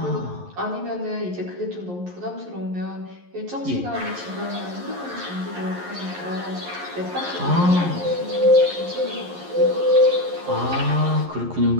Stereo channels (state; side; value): late; left; 11 ms